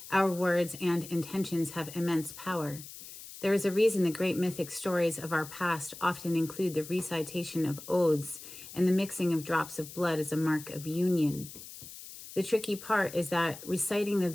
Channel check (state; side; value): noise; left; hiss, 14 dB below the sound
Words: Our words and intentions have immense power. There is a reason the great mythic stories of our past often include the recitation of oaths and the mixing of drops of blood as a mark of union. The tricky part is that reciting the